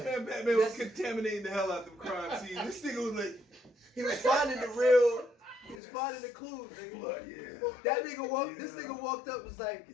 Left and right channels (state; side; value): drops out; right; at 5.8 s